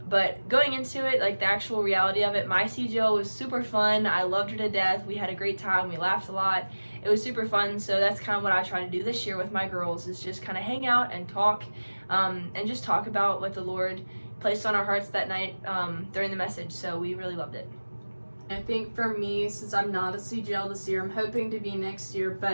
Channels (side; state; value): both; inverted; correlation -1.00